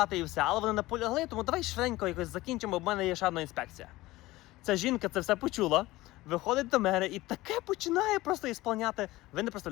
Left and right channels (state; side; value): quieter; right; 18.5 dB